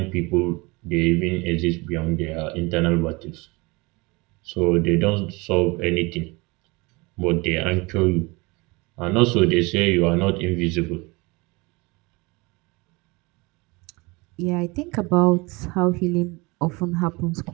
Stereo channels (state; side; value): quieter; left; 25.4 dB